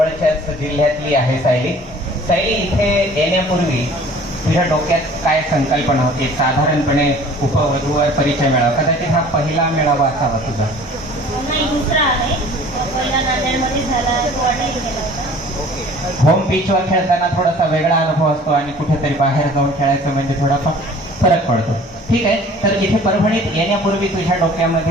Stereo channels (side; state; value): both; normal; correlation 0.49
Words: जिल्ह्यातली आहे सायली. सायली, इथे येण्यापूर्वी तुझ्या डोक्यात काय संकल्पना होती? साधारणपणे उपवधूवर परिचय मेळावा, कदाचित हा पहिला मेळावा असावा तुझा. नाही, दुसरा आहे. पहिला नांदेडमध्ये झाला, तो अटेंड केला होता. होम पिचवर खेळताना थोडासा वेगळा अनुभव असतो आणि कुठेतरी बाहेर जाऊन खेळायचं म्हणजे थोडासा फरक पडतो. ठीक आहे, तर इथे परभणीत येण्यापूर्वी तुझ्या